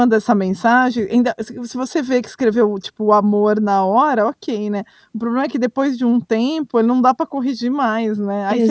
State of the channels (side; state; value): both; identical; correlation 1.00